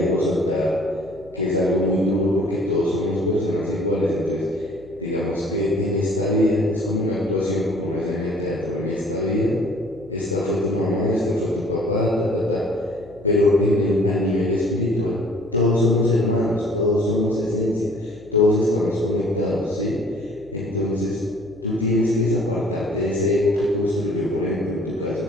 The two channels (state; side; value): noise; left; hum, 23 dB below the sound